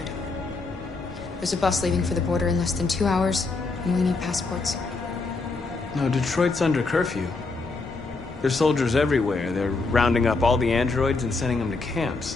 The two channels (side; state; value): right; quieter; 3.8 dB